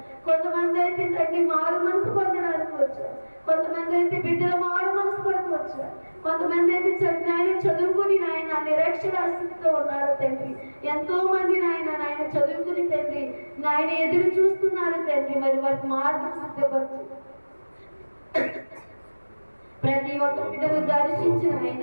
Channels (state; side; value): inverted; both; correlation -1.00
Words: కొంతమంది అయితే తండ్రి మారు మనసు పొందడానికి వచ్చారు. కొంతమంది అయితే బిడ్డలు మారు మనసు కొరకు వచ్చారు. కొంతమంది అయితే నాయన చదువుకుని నాయన నిరక్షరాస్యతతో ఉన్నారు తండ్రి. ఎంతో మంది నాయన చదువుకుని తండ్రి నాయన ఎదురు చూస్తున్నారు తండ్రి. మరి వారికి మార్గం సిద్ధపరచు. ప్రతి ఒక్క బిడ్డను దర్శించిన